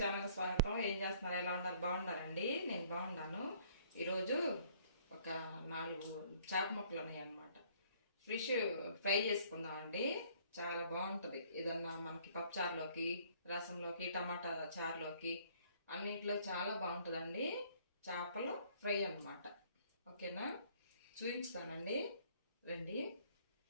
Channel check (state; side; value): inverted; both; correlation -0.59